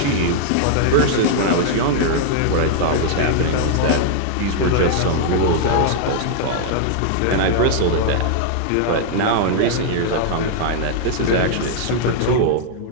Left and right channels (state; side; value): different; both; correlation -0.01